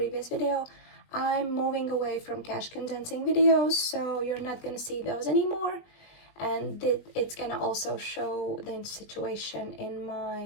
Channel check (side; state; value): right; late; 20 ms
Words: video, I'm moving away from cash condensing videos, so you're not gonna see those anymore. And it's gonna also show the situation in